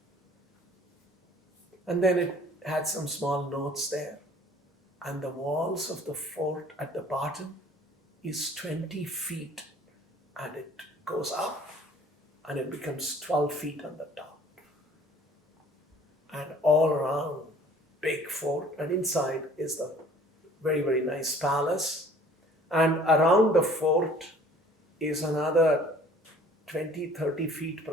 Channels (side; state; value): both; normal; correlation 0.52